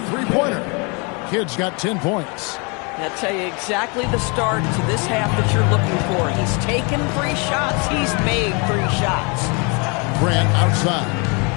three-pointer. Kidd's got 10 points. I'll tell you exactly the start to this half that you're looking for. He's taken 3 shots. He's made 3 shots. Grant outside.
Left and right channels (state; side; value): quieter; right; 32.2 dB